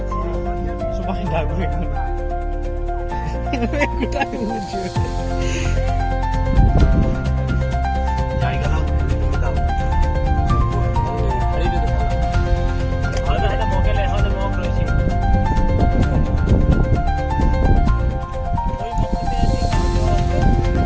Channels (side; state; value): both; identical; correlation 1.00